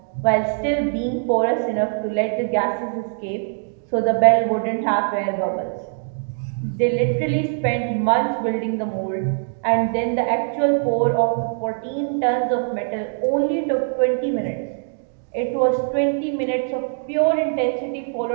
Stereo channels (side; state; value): left; silent; digital silence